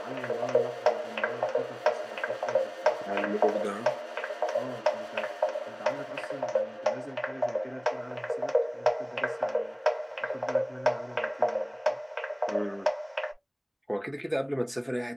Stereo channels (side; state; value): both; identical; correlation 1.00